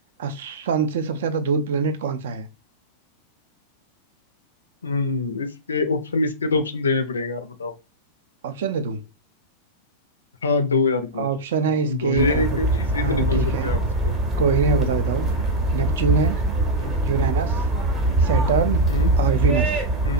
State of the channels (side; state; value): both; normal; correlation -0.08